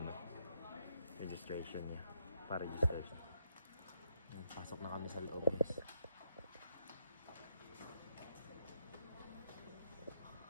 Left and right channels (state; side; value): inverted; both; correlation -0.77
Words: registration niya. Pa-register siya. Yan, pasok na kami sa loob guys.